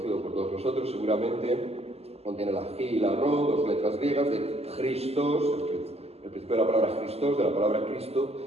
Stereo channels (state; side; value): late; left; 0.29 ms